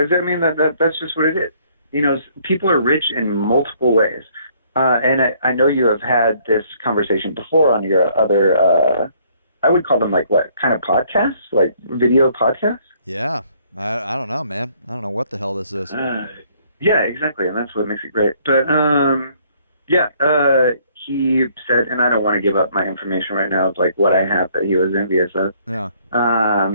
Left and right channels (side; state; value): both; inverted; correlation -0.64